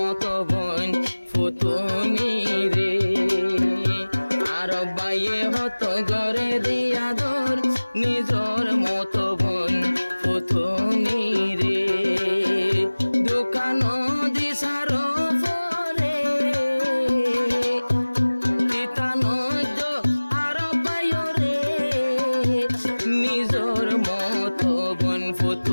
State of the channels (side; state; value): both; inverted; correlation -1.00